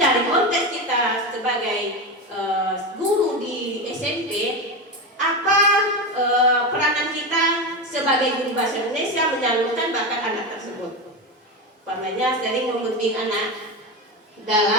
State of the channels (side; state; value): both; normal; correlation 0.18